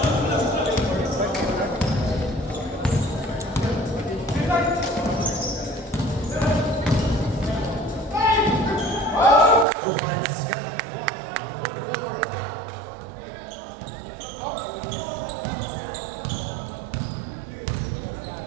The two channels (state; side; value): drops out; left; at 9.7 s